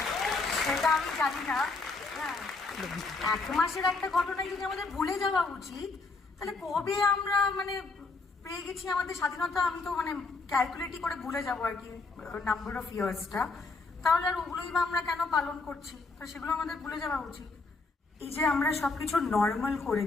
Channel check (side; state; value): right; quieter; 3.8 dB